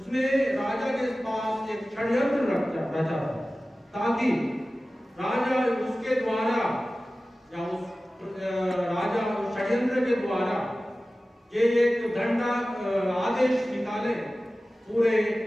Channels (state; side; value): normal; both; correlation 0.96